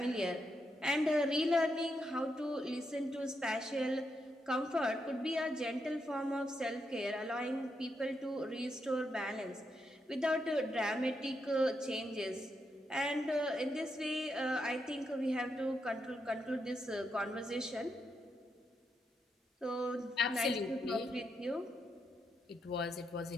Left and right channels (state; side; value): normal; both; correlation 0.82